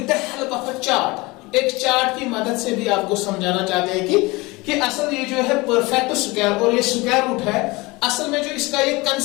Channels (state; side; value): quieter; right; 23.2 dB